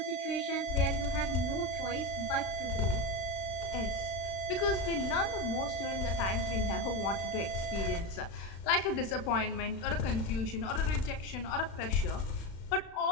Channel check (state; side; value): late; right; 36 ms